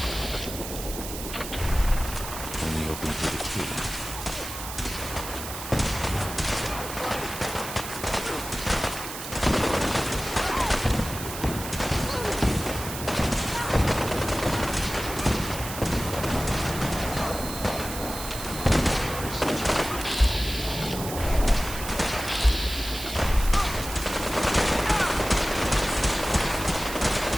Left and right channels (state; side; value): noise; right; hiss, 9 dB below the sound